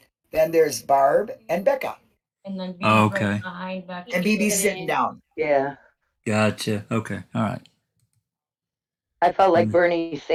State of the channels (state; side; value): identical; both; correlation 1.00